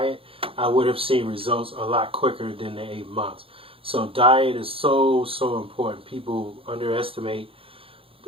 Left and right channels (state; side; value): late; left; 0.27 ms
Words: I would have seen results a lot quicker than the 8 months. So diet is so important. People underestimate